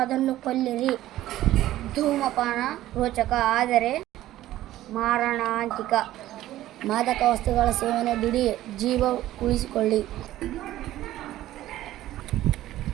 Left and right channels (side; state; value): left; quieter; 14.4 dB